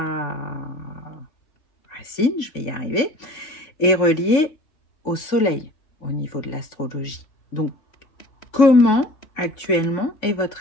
racine, je vais y arriver, est relié au soleil au niveau de l'astrologie. Donc, comment actuellement est votre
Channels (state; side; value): late; right; 3.5 ms